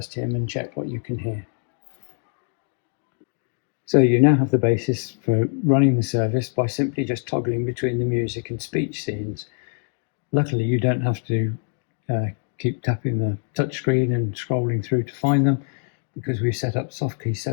hymn and check what you can hear. So you now have the basis for running the service by simply just toggling between the music and speech scenes. Luckily, you don't have to keep tapping the touchscreen and scrolling through to find them, because we've set up soft key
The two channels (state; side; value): silent; right; digital silence